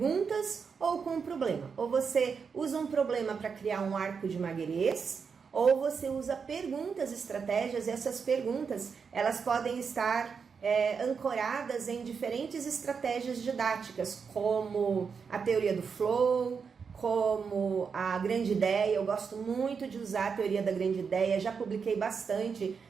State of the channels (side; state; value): left; quieter; 5.9 dB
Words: ou com um problema. Ou você usa um problema para criar um arco de Maguerês, ou você usa perguntas, estratégias, e essas perguntas elas podem estar ancoradas em diferentes estratégias didáticas, como a teoria do flow, como a grande ideia. Eu gosto muito de usar a teoria da grande ideia, já publiquei bastante